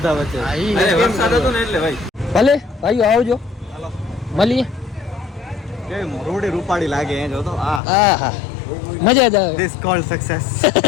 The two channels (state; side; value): drops out; right; at 7.8 s